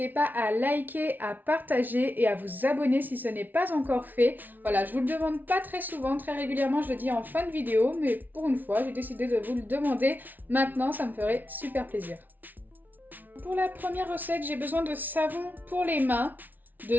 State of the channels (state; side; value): late; left; 0.083 ms